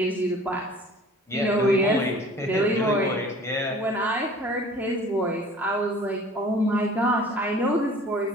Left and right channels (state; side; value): normal; both; correlation 0.48